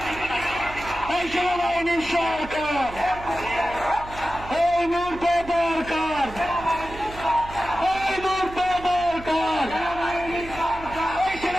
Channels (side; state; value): right; noise; hum, 15 dB below the sound